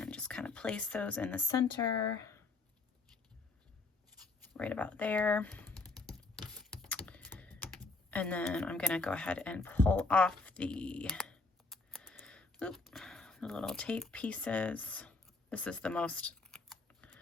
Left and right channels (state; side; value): quieter; right; 3.6 dB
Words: just kind of place those in the center, right about there. And then I'm going to go ahead and pull off the little tape pieces. This is the most